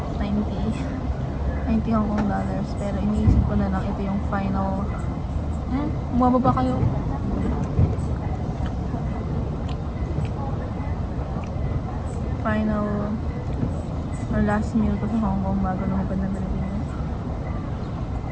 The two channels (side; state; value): both; identical; correlation 1.00